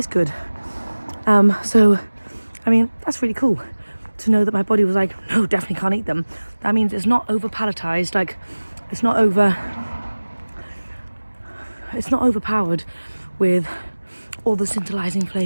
good. So, I mean, that's really cool to know that my body was like, no, definitely can't eat them. That means it's not over palatized, like it's not overpowered with all the scintillating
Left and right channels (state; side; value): inverted; both; correlation -1.00